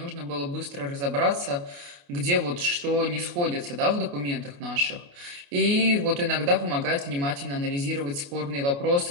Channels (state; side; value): late; left; 28 ms